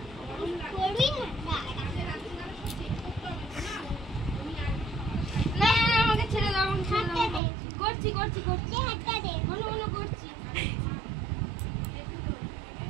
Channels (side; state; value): left; drops out; at 7.4 s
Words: করবি না না না আমাকে ছেড়ে দাও, আমাকে ছেড়ে হাতটা দাও। দে। করছি করছি করছি, দে হাতটা দে। মনে মনে করছি।